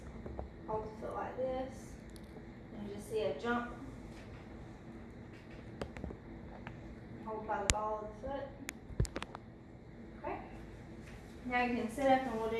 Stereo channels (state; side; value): identical; both; correlation 1.00